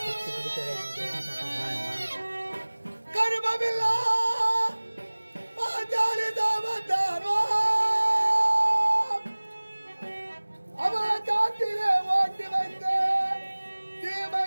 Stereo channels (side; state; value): both; inverted; correlation -1.00